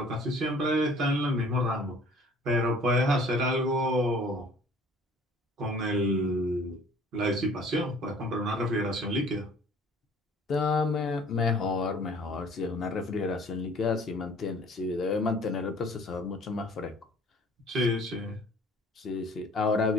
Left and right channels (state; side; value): normal; both; correlation 0.52